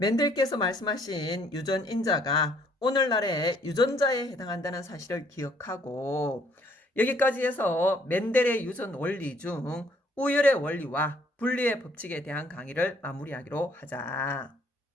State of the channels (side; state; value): both; normal; correlation 0.64